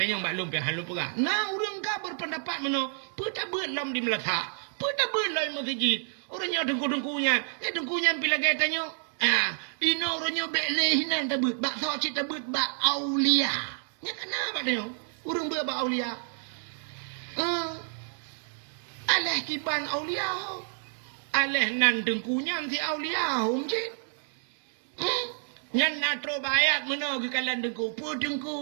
tanya mbak lu pian lu pegah. Nah urang ka berpendapat meno, peta beut lam di melata, peta beut lai masjid. Orangnya dengku-dengkunya, dengkunya pila gaya tanya. Ino orangnya bet lehinan tabut, bak sok cita beut bak aulia. Nya kenapa tanya? Urang beut bak aulia. Alah kiban aulia. Alah nan dengkunya si aulia hom cik. Yang nak terbayat mana ke kalan dengku. Pun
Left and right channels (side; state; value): left; silent; digital silence